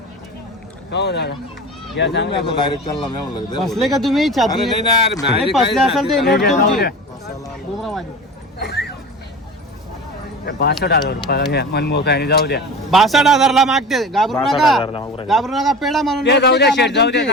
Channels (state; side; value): normal; both; correlation 0.33